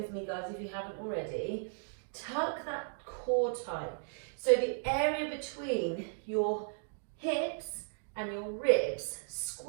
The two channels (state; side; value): silent; left; digital silence